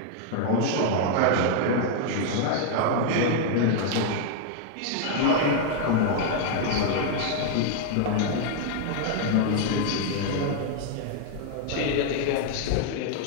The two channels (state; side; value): different; both; correlation 0.00